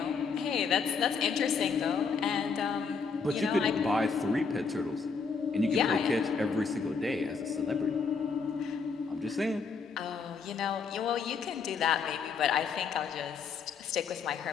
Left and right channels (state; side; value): quieter; right; 5.3 dB